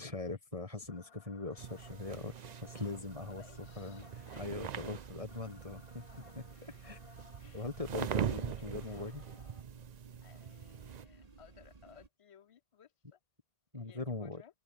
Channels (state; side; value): late; left; 1.9 ms